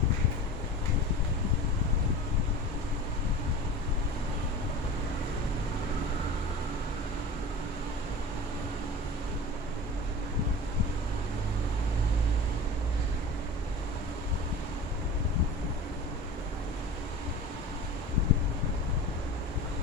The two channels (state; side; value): normal; both; correlation 0.35